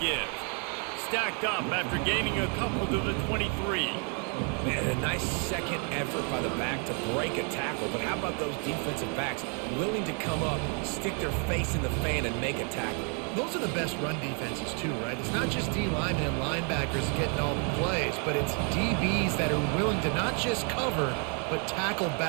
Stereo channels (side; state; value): left; quieter; 38.8 dB